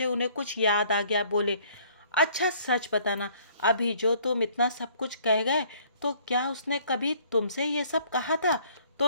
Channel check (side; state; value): both; inverted; correlation -0.59